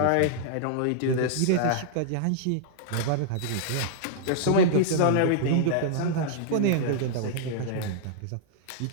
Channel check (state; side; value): different; both; correlation -0.01